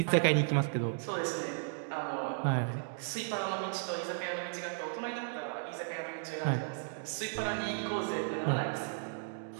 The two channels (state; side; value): silent; left; digital silence